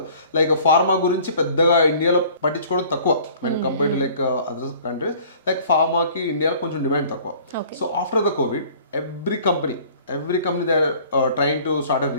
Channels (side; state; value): both; inverted; correlation -0.51